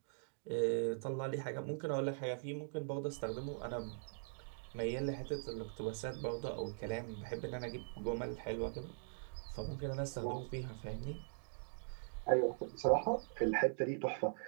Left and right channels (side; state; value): left; silent; digital silence